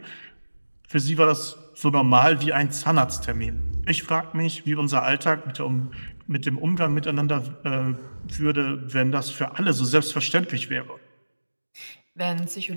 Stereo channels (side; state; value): both; inverted; correlation -1.00